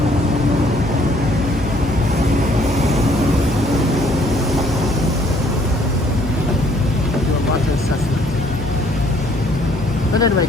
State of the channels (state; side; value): normal; both; correlation 0.63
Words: Do a water assessment. But anyway,